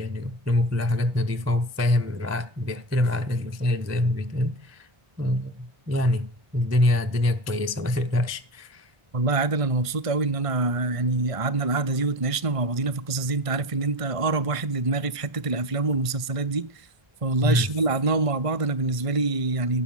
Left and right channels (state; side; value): late; left; 1.5 ms